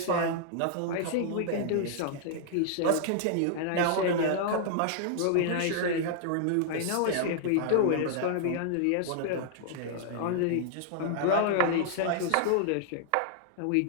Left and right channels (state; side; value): different; both; correlation -0.01